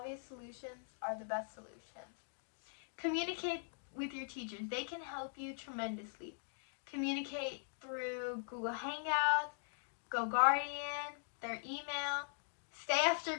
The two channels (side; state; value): right; silent; digital silence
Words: solutions are the best solutions. Communicate with your teachers. They can help you tremendously. Communicate through Google Hangouts, GoGuardian, their email. Stay after